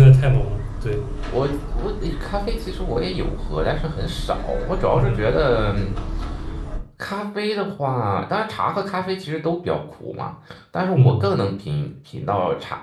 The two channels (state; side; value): identical; both; correlation 1.00